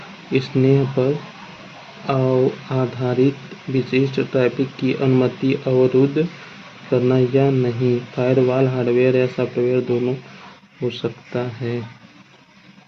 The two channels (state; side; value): identical; both; correlation 1.00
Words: स्तर पर आधारित विशिष्ट ट्रैफिक की अनुमति अवरुद्ध करना या नहीं। फायरवॉल हार्डवेयर या सॉफ्टवेयर दोनों हो सकता है।